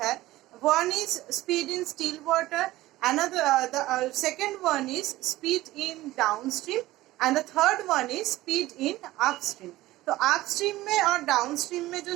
One is speed in still water, another the second one is speed in downstream and the third one is speed in upstream. तो upstream में और डाउनस्ट्रीम में जो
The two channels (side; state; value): left; quieter; 17.1 dB